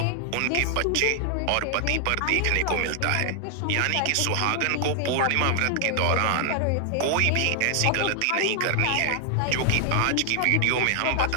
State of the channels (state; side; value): different; both; correlation 0.00